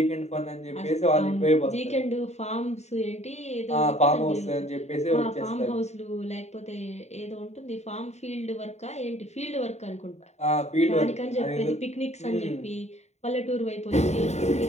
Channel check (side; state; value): right; late; 0.32 ms